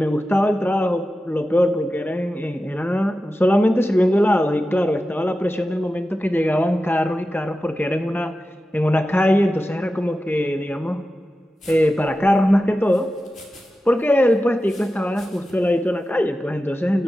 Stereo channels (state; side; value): normal; both; correlation 0.93